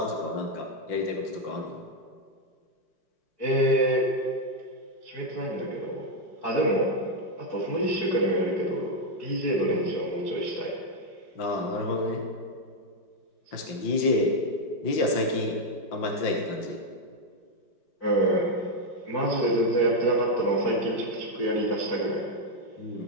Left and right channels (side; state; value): right; late; 5.7 ms